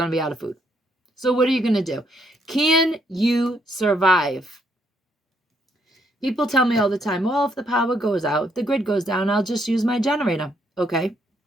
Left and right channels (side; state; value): both; normal; correlation 0.72